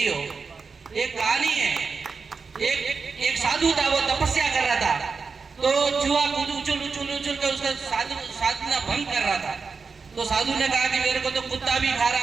हो? एक कहानी है, एक साधु था, वो तपस्या कर रहा था, तो चूहा उछल के उसका साधना भंग कर रहा था। तो साधु ने कहा कि मेरे को तो कुत्ता भी खा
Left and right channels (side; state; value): left; quieter; 4.9 dB